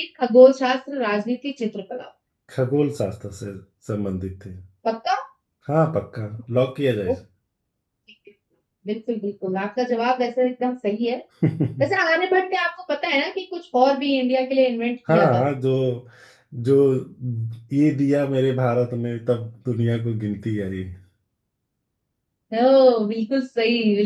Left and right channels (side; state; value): both; identical; correlation 1.00